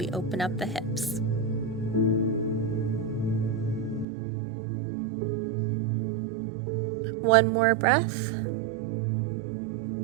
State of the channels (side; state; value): left; drops out; at 4.0 s